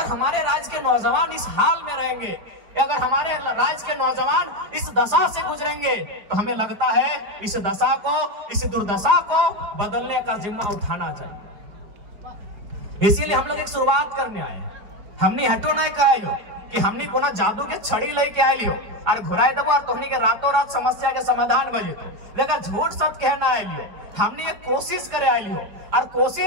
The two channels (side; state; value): left; late; 4.9 ms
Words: हमारे राज्य के नौजवान इस हाल में रहेंगे, अगर हमारे राज्य के नौजवान इस दशा से गुजरेंगे, तो हमें लगता है इस दशा को, इस दुर्दशा को बदलने का जिम्मा उठाना चाहिए। इसीलिए हम लोग एक शुरुआत करने आए हैं। हमने हटो नहीं कहा कि हमने कोना जादू के छड़ी लेके आए लियो और घुराए देबो और तोहनी के रातों रात समस्या के समाधान बजे तो, लेकिन झूठ सच कहना आए लियो। हमने एक कोशिश करे आए लियो और